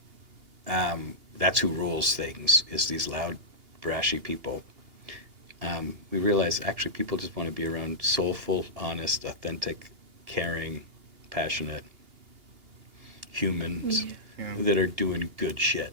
who rules things, is these loud, brashy people. We realize actually people just want to be around soulful, honest, authentic, caring, passionate humans that are doing good shit.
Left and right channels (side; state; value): left; late; 2.8 ms